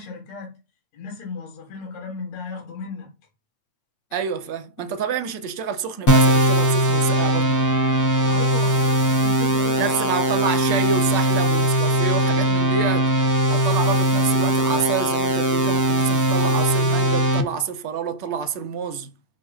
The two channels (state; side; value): late; right; 8.7 ms